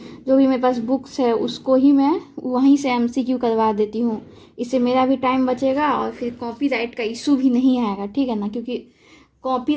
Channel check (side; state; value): both; identical; correlation 1.00